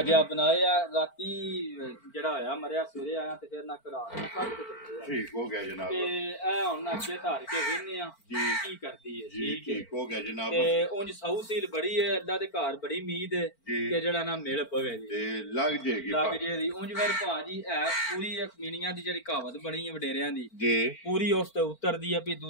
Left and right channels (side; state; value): right; late; 4.4 ms